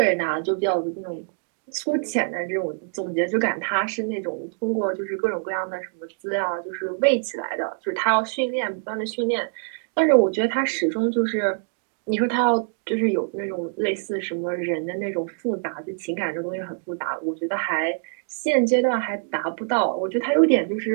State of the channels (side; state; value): left; silent; 62 dB below the other